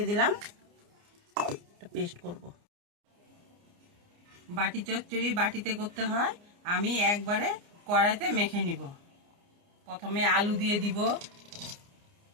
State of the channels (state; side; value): late; left; 29 ms